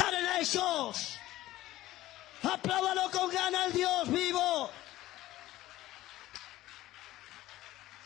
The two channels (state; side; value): quieter; right; 15.8 dB